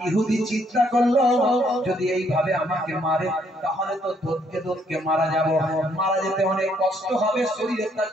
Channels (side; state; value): both; normal; correlation 0.69